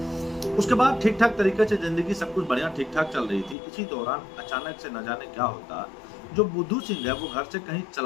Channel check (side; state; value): right; drops out; at 3.6 s